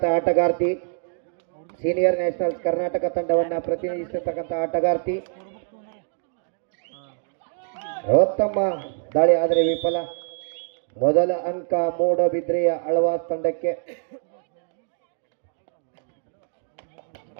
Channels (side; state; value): left; silent; digital silence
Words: ಆಟಗಾರ್ತಿ ಸೀನಿಯರ್ ನ್ಯಾಷನಲ್ಸ್ ಕರ್ನಾಟಕ ತಂಡವನ್ನು ಪ್ರತಿನಿಧಿಸಿರ್ತಕ್ಕಂಥ ಆಟಗಾರ್ತಿ ಉತ್ತಮ ದಾಳಿ ಆದರೆ ವಿಫಲ. ಮೊದಲ ಅಂಕ ಮೂಡಬಿದ್ರೆಯ ಆಳ್ವಾಸ್ ತಂಡಕ್ಕೆ.